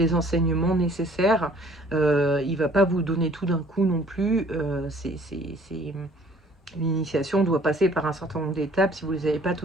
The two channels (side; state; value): both; normal; correlation 0.55